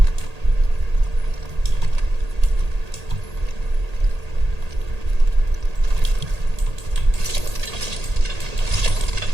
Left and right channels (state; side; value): late; left; 1.8 ms